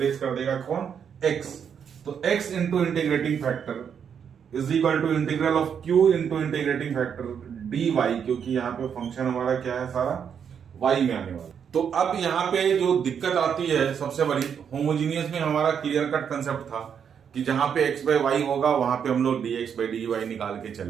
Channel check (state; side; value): quieter; left; 7.6 dB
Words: कर देगा कौन, x। तो x into integrating factor is equal to integral of q into integrating factor dy, क्योंकि यहाँ पे फंक्शन हमारा क्या है, सारा y में आने वाला। तो अब यहाँ पे जो दिक्कत आती है सबसे बड़ी, होमोजीनियस में हमारा क्लियर कट कंसेप्ट था कि जहां पे x by y होगा वहां पे हम लोग dx by dy निकाल के